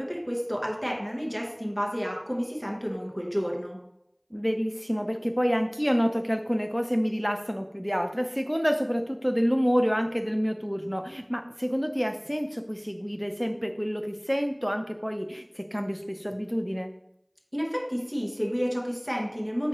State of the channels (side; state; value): both; identical; correlation 1.00